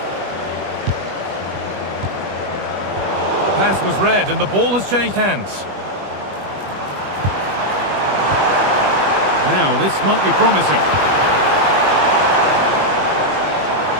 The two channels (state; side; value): late; left; 21 ms